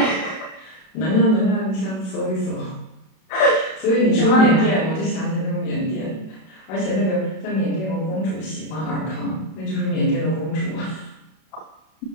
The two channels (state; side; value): late; right; 32 ms